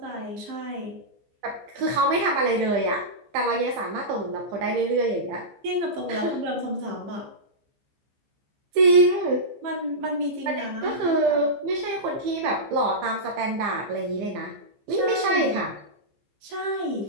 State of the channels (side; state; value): left; late; 15 ms